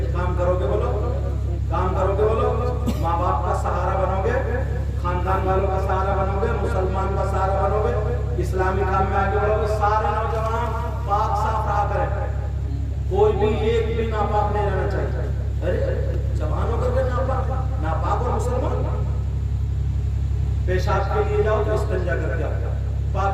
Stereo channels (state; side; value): identical; both; correlation 1.00